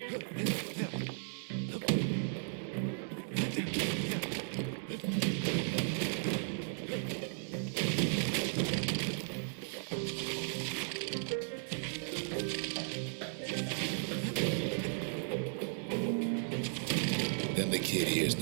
Then the kid hears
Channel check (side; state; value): left; silent; 54 dB below the other